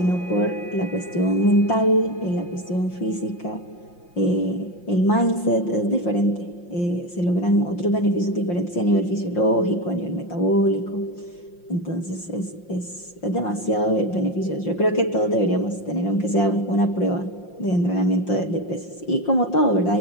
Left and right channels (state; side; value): late; right; 5.7 ms